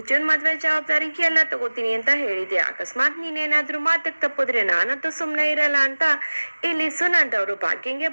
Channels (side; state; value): both; inverted; correlation -1.00